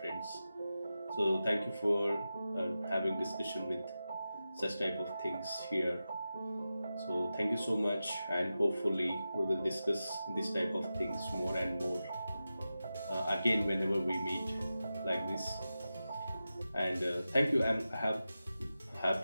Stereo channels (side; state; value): both; inverted; correlation -0.92